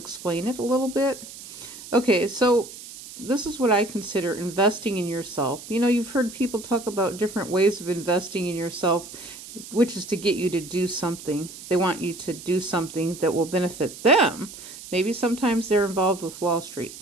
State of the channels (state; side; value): noise; right; hiss, 14 dB below the sound